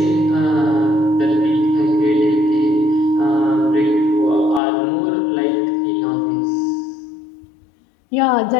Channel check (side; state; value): right; drops out; at 4.6 s